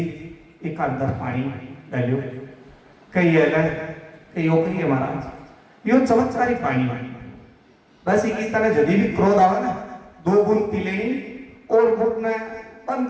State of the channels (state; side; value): identical; both; correlation 1.00